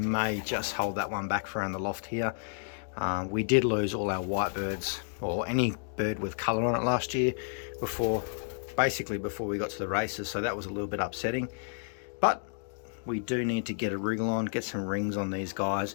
just hold that one back for around the loft here. We did lose all our white birds, or any bird with colour on it last year, basically before we got to the races, so that was a little bit upsetting. But we do need to get a wriggle on, get some rings on these guys.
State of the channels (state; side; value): silent; right; digital silence